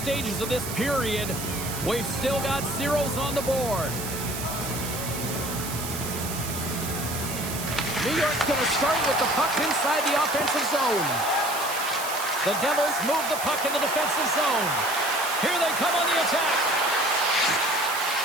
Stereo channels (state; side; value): noise; right; hiss, 7 dB below the sound